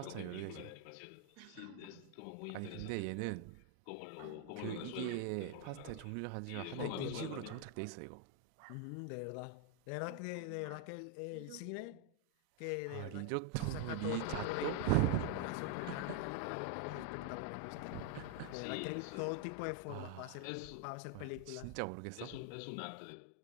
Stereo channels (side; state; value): both; different; correlation 0.00